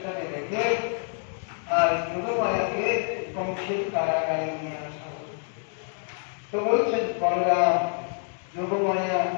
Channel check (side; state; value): right; silent; 59 dB below the other